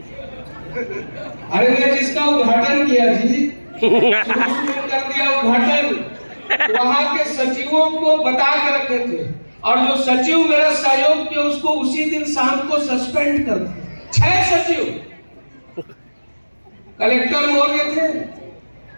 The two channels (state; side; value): inverted; both; correlation -1.00